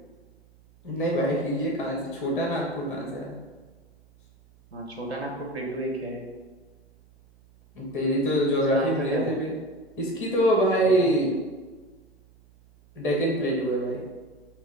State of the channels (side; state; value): right; noise; hum, 28 dB below the sound